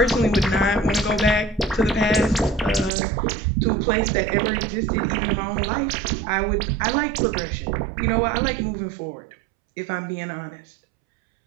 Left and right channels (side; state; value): left; drops out; at 2.9 s